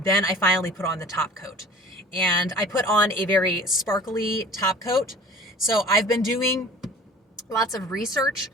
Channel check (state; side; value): normal; both; correlation 0.45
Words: then I finally put on the top coat. And I put on a very sparkly top coat. So I've been doing lots of research